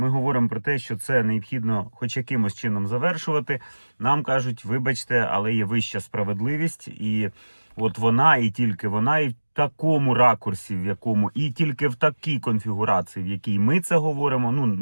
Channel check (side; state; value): both; inverted; correlation -1.00